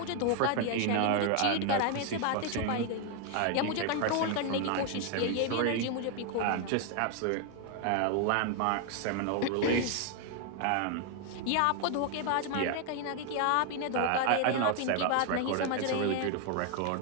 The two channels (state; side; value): different; both; correlation 0.00